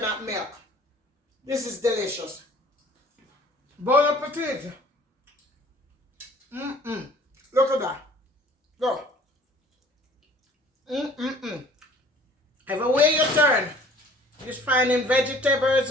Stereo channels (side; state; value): both; normal; correlation 0.52